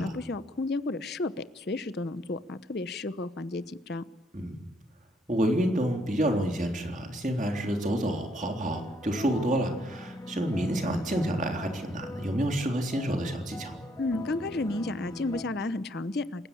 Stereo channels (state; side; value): normal; both; correlation 0.69